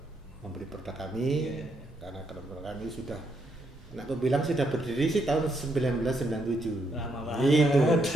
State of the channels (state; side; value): normal; both; correlation 0.77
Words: membeli produk kami. Karena produk kami sudah, aku bilang sudah berdiri sih tahun 1997. Lama banget. Gitu.